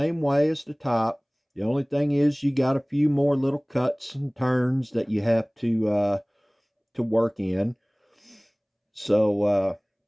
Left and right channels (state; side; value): identical; both; correlation 1.00